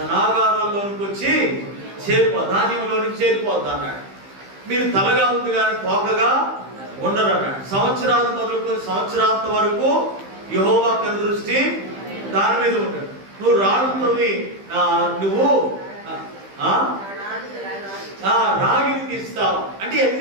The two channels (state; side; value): late; left; 15 ms